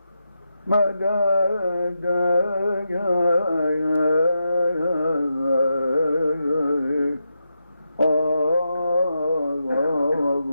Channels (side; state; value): both; inverted; correlation -0.86